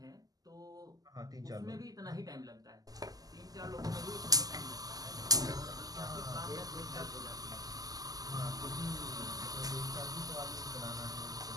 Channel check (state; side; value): late; left; 0.18 ms